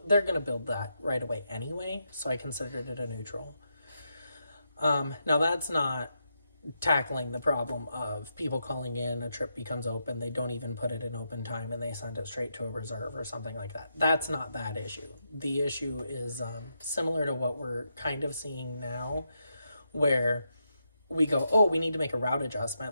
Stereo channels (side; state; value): both; inverted; correlation -0.83